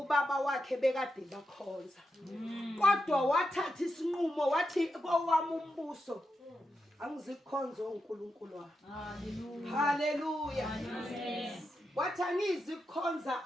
wakhe bekade bakhonza. Kodwa wathatha isinqumo wathi kowami umbuso angizikhonza onkulunkulu wami. Hallelujah. Hallelujah. Wathi angizikhonza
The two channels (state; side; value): normal; both; correlation 0.87